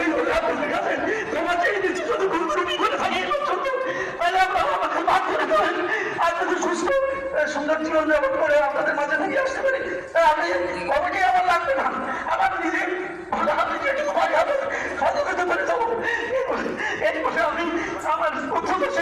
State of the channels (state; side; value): identical; both; correlation 1.00